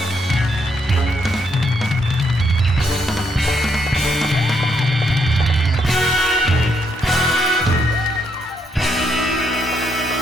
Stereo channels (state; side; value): normal; both; correlation 0.75